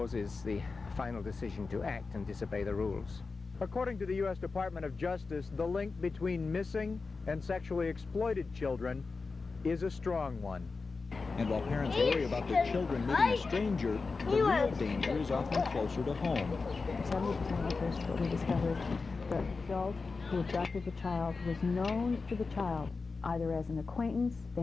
the final decision to act and disobey the rules. According to the U.S. Department of Justice, the link between missing and sexually exploited children is a strong one. And while parents worry about their children meeting a stranger, the real danger is often closer to home. 70% of the cases, what we discover is the adult who abducted the child was known to the child, either as an acquaintance,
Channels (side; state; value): right; quieter; 4.3 dB